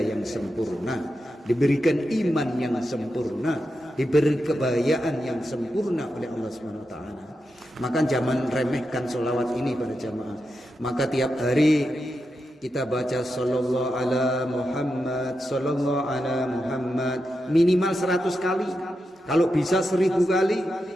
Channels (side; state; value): both; normal; correlation 0.88